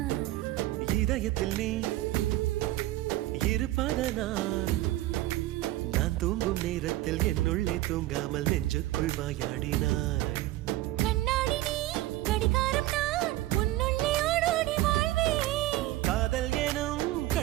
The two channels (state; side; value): quieter; left; 16.7 dB